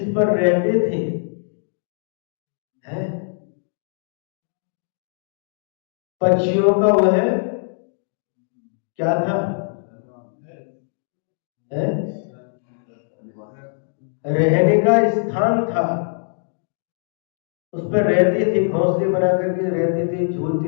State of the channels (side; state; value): right; silent; digital silence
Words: पर रहते थे, है पक्षियों का वह क्या था? है रहने का स्थान था। उस पर रहते थे, घोंसले बना करके रहते थे,